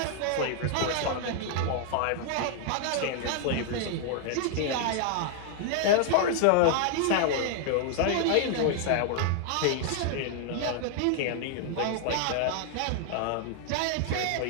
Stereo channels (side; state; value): both; different; correlation 0.00